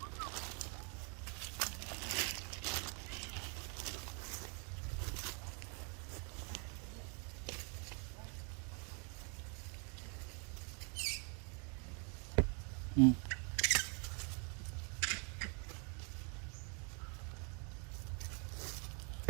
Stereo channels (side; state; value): left; quieter; 36.5 dB